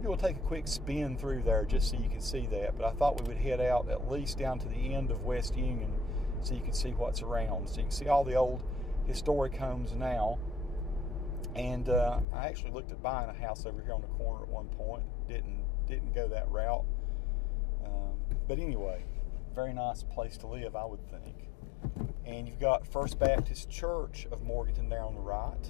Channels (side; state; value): right; drops out; at 12.2 s